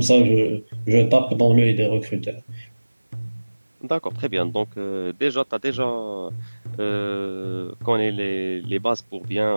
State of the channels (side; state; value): both; inverted; correlation -1.00